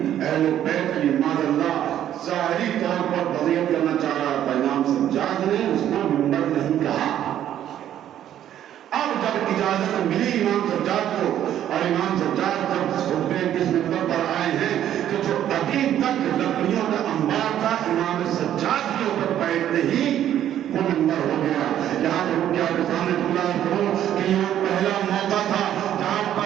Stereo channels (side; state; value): left; quieter; 11.1 dB